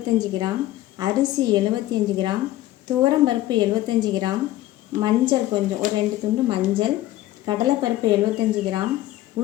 கிராம், அரிசி 75 கிராம், துவரம்பருப்பு 75 கிராம், மஞ்சள் கொஞ்சம் ஒரு 2 துண்டு மஞ்சள், கடலைப்பருப்பு 75 கிராம்,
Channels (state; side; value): quieter; right; 15.2 dB